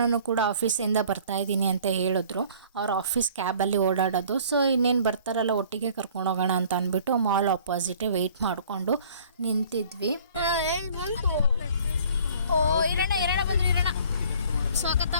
ಕೂಡ ಆಫೀಸಿಂದ ಬರ್ತಾ ಇದ್ದೀನಿ ಅಂತ ಹೇಳಿದ್ರು. ಅವ್ರ ಆಫೀಸ್ ಕ್ಯಾಬಲ್ಲಿ ಓಡಾಡೋದು. ಸೊ ಇನ್ನೇನು ಬರ್ತಾರಲ್ಲ ಒಟ್ಟಿಗೆ ಕರ್ಕೊಂಡು ಹೋಗೋಣ ಅಂತ ಅಂದ್ಬಿಟ್ಟು ಮಾಲ್ ಆಪೋಸಿಟೇ ವೆಯ್ಟ್ ಮಾಡಿಕೊಂಡು ನಿಂತಿದ್ವಿ. ಓ ಇರೋಣ ಬಂದ್ರೆ ಇರೋಣ, ಸ್ವಾಗತ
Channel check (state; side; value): inverted; both; correlation -0.52